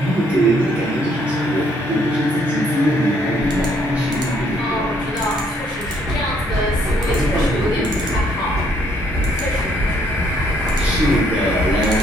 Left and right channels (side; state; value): both; normal; correlation 0.68